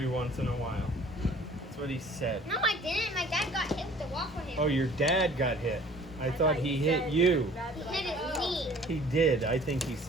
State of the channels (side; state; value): both; normal; correlation 0.51